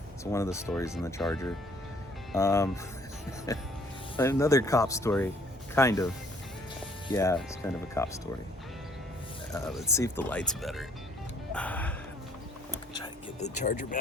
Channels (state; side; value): normal; both; correlation 0.61